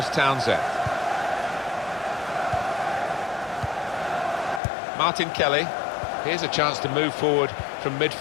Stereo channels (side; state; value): right; drops out; at 4.6 s